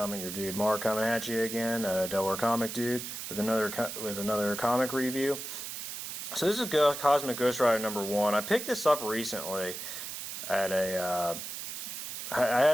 your dude Mark coming at you again, Delaware Comic Dude, with another comic review. So this is Cosmic Ghost Rider #1. I picked this up recently at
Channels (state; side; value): noise; right; hiss, 7 dB below the sound